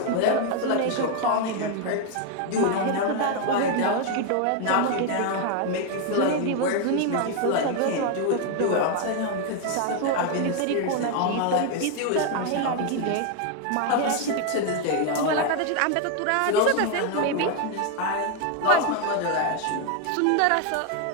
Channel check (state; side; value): different; both; correlation 0.01